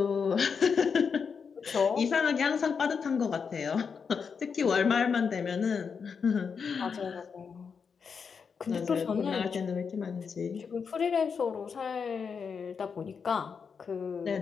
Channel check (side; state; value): right; quieter; 6.0 dB